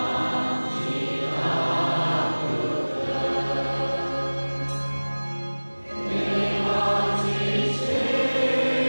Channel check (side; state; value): both; inverted; correlation -1.00